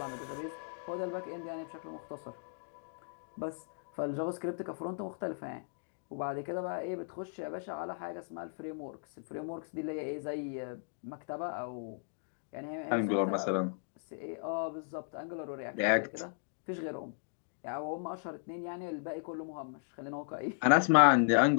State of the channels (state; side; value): silent; right; digital silence